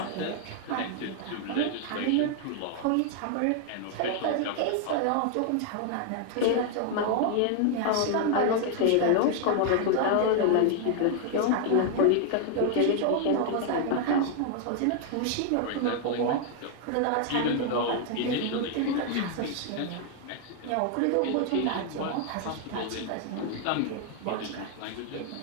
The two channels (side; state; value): both; different; correlation 0.00